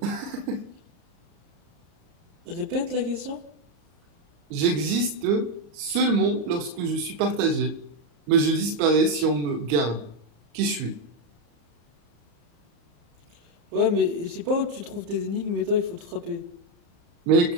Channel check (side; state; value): left; late; 34 ms